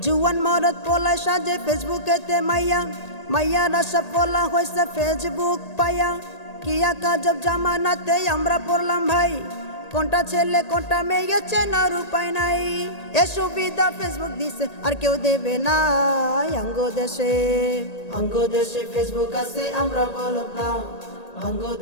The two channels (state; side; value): late; right; 1.8 ms